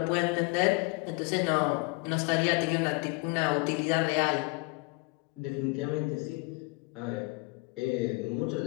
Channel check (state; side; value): quieter; right; 26.8 dB